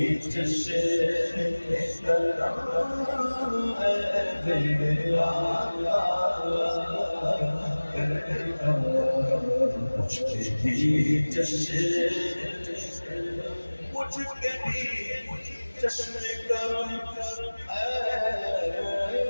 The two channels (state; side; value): inverted; both; correlation -1.00